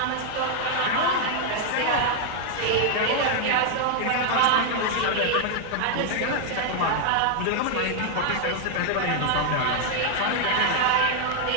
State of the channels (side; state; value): both; different; correlation 0.00